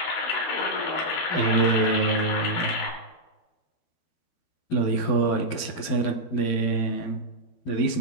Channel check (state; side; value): late; right; 12 ms